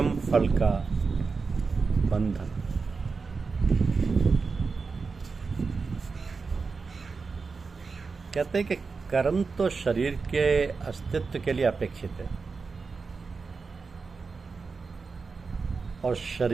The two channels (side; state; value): left; quieter; 4.6 dB